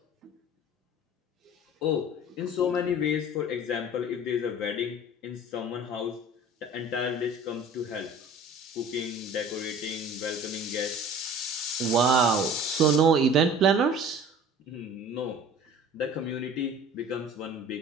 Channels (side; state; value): both; normal; correlation 0.44